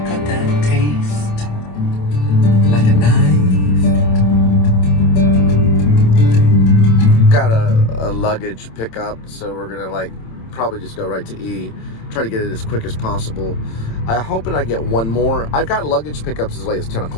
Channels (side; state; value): right; late; 27 ms